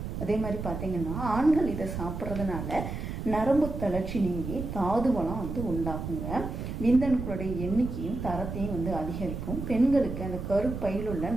அதே மாதிரி பார்த்தீங்கன்னா ஆண்கள் இதை சாப்பிட்றதுனால நரம்பு தளர்ச்சி நீங்கி தாது வளம் உண்டாகுங்க. விந்தணுக்களுடைய எண்ணிக்கையும் தரத்தையும் அதிகரிக்கும். பெண்களுக்கு அந்த கருப்பையில் உள்ள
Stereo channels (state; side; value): noise; right; rumble, 6 dB below the sound